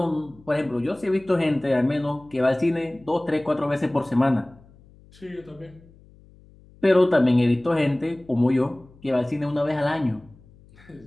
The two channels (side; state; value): left; noise; hum, 26 dB below the sound